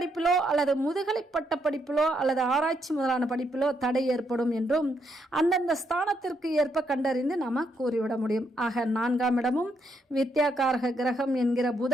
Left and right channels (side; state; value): both; normal; correlation 0.76